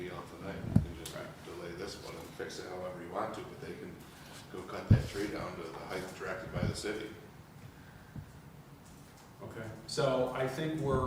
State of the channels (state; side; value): identical; both; correlation 1.00